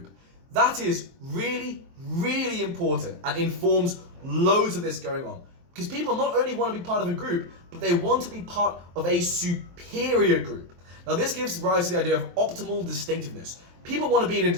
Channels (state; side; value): late; left; 23 ms